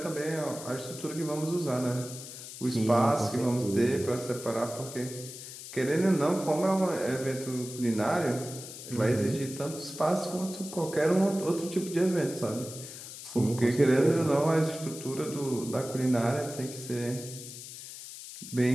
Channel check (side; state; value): left; noise; hiss, 12 dB below the sound